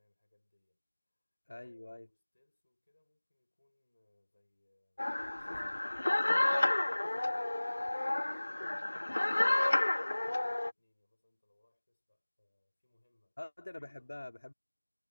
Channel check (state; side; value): inverted; both; correlation -1.00